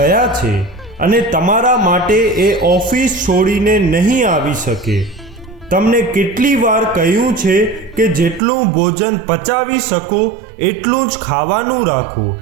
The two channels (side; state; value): left; drops out; at 8.4 s